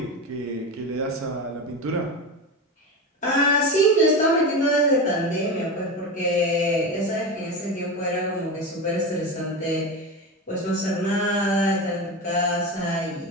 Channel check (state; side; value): normal; both; correlation 0.22